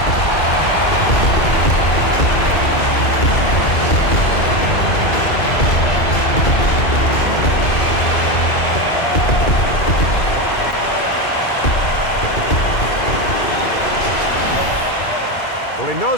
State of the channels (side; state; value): right; late; 2.2 ms